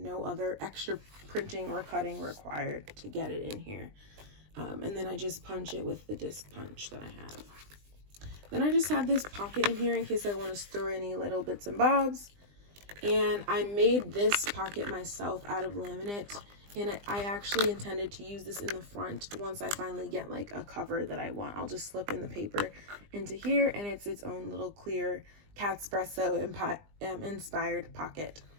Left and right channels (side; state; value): left; late; 20 ms